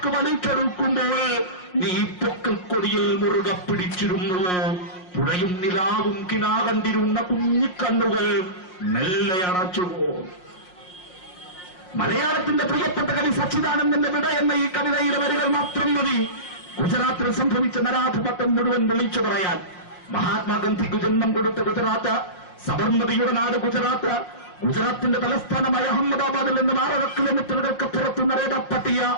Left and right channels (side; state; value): right; late; 5.5 ms